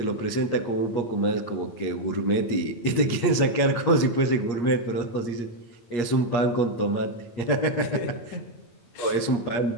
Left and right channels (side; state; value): right; late; 8.5 ms